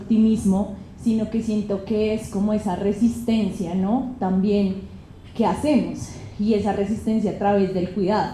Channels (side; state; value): both; identical; correlation 1.00